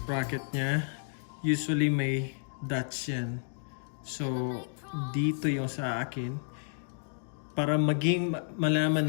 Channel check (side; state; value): right; silent; digital silence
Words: nya, usually may dots yan. So, dito yung sa akin. Para maging